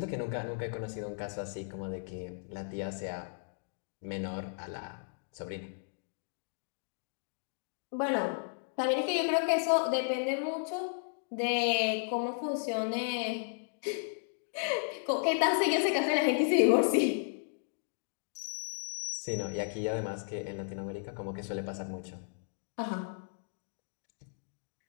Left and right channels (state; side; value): silent; right; digital silence